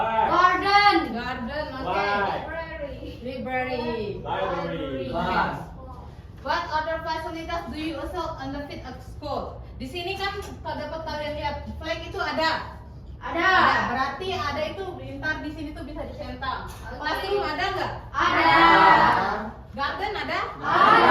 Garden. garden, oke, Why? library. Library. Class. What other facilities do you also benefit at school? Di sini kan dapat kalian lihat flag itu ada. Ada. Berarti ada itu ntar di sini tuh bisa dicentang. Classroom ada nggak? Ada. Garden ada?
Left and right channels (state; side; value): identical; both; correlation 1.00